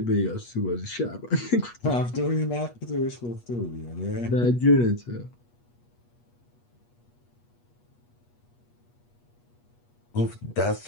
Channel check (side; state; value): right; late; 8.3 ms